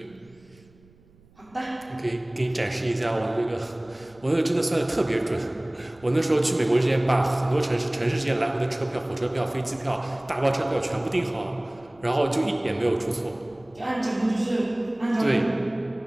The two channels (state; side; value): noise; right; rumble, 29 dB below the sound